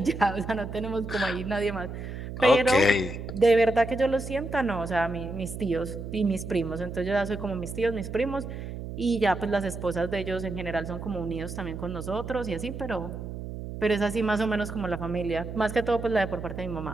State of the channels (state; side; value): noise; right; hum, 8 dB below the sound